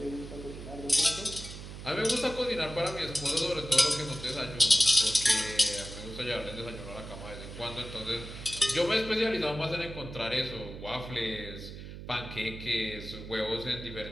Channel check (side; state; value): right; noise; hum, 11 dB below the sound